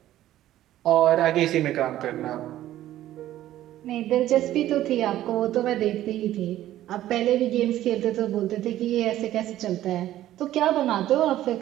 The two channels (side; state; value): left; quieter; 13.6 dB